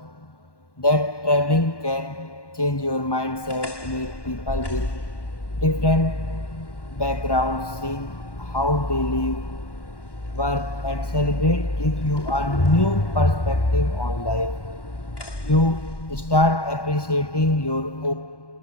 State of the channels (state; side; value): late; right; 1.1 ms